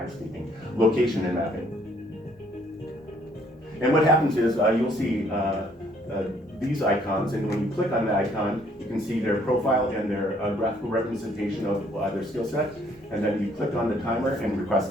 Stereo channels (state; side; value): normal; both; correlation 0.64